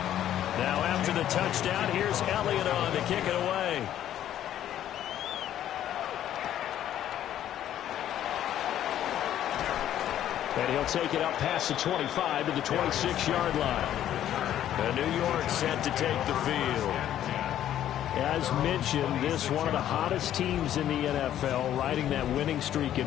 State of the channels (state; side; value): quieter; right; 11.5 dB